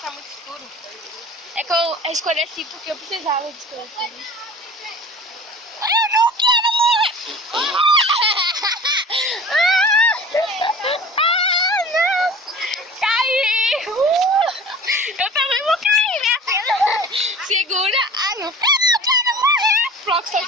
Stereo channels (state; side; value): normal; both; correlation 0.41